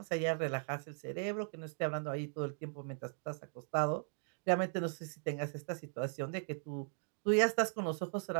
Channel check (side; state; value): left; silent; 52 dB below the other